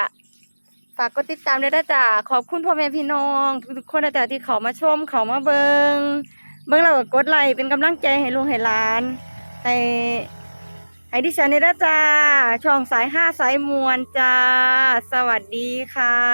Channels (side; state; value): both; inverted; correlation -1.00